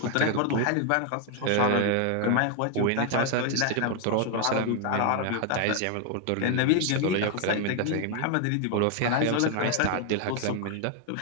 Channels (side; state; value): both; different; correlation 0.00